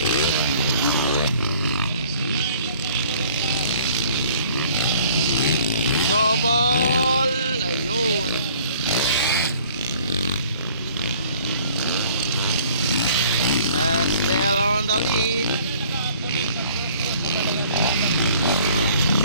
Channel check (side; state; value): both; inverted; correlation -0.55